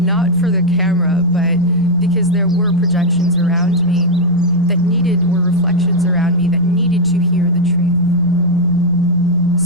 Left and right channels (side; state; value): both; normal; correlation 0.01